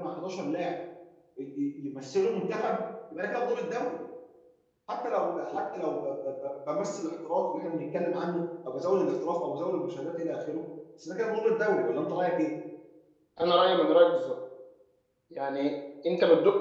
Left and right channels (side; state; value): both; identical; correlation 1.00